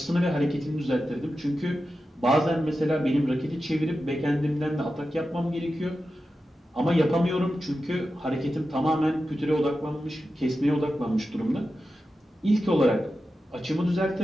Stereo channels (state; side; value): normal; both; correlation 0.91